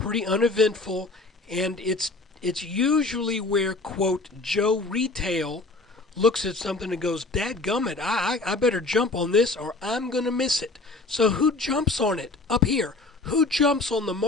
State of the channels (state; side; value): quieter; right; 3.2 dB